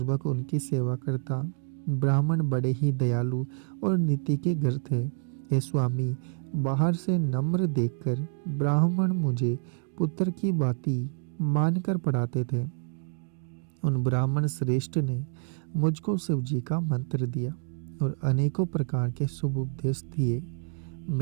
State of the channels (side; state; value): left; silent; 59 dB below the other